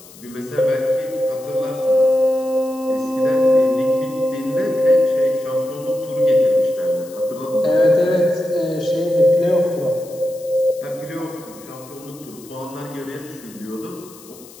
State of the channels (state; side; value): noise; left; hiss, 21 dB below the sound